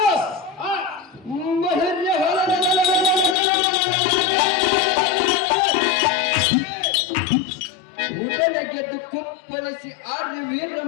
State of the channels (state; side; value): drops out; right; at 3.4 s